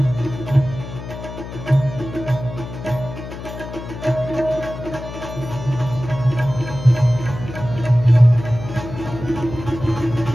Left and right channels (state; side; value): noise; left; hum, 10 dB below the sound